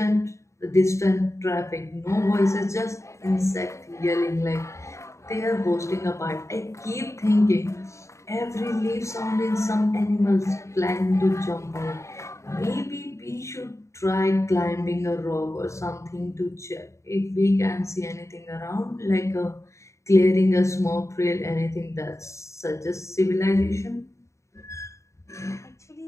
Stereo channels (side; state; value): right; late; 0.14 ms